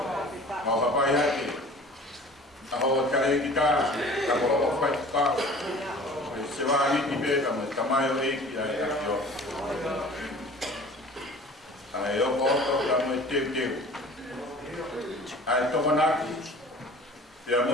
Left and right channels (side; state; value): both; normal; correlation 0.45